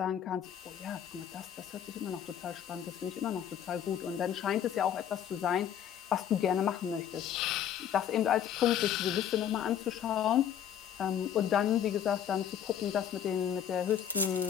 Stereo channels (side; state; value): right; quieter; 9.4 dB